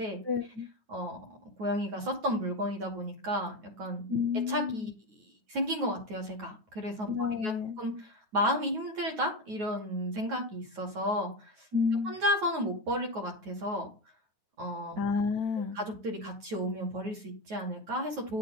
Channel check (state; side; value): late; left; 9.3 ms